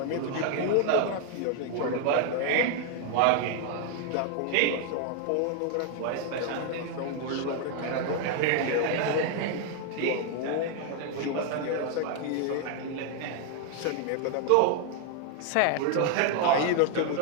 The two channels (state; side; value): different; both; correlation 0.00